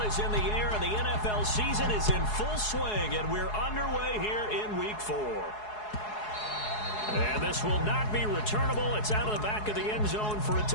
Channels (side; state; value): right; late; 4.7 ms